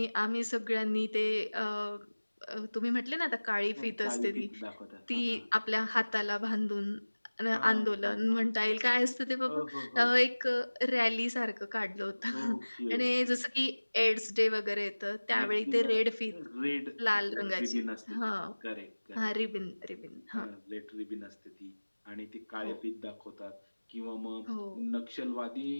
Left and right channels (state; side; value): inverted; both; correlation -1.00